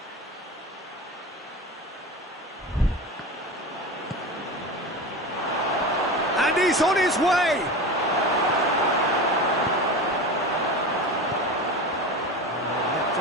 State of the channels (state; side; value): normal; both; correlation 0.28